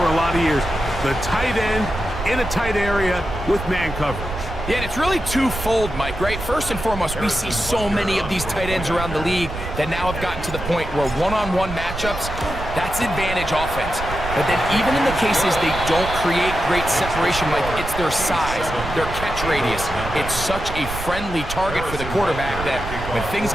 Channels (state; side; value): noise; right; rumble, 8 dB below the sound